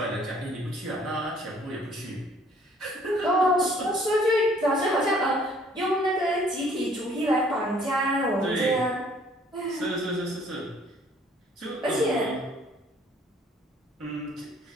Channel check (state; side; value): normal; both; correlation 0.59